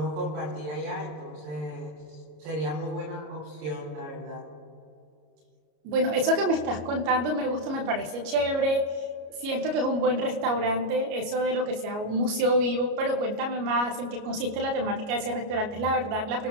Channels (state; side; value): late; left; 33 ms